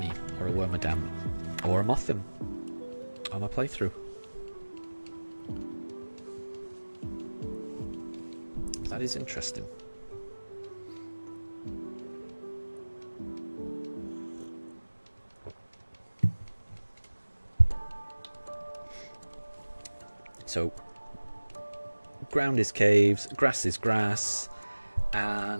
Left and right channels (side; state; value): both; inverted; correlation -1.00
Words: or a Wormadam or a Mothim on my playthrough. That is interesting. So, ground is caves, grass is grass,